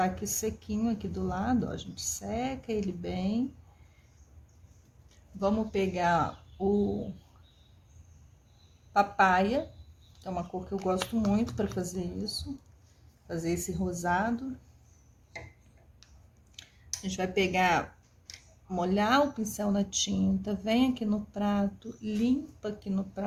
aqui sequinho aqui do lado, ó. A gente seca ele bem. Vamos pegar o papaya, que é uma cor que eu gosto muito para fazer isso. Fazer esse rosado. A gente vai pegar, molhar o pincel na tinta, vem aqui no prato, limpa aqui no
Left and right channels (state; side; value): identical; both; correlation 1.00